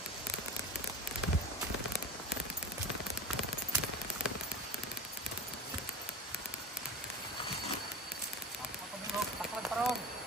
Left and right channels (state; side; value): normal; both; correlation 0.32